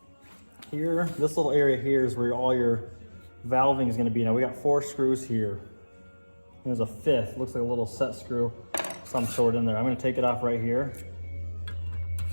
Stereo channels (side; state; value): both; inverted; correlation -1.00